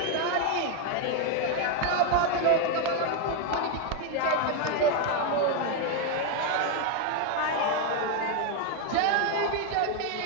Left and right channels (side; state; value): both; different; correlation 0.01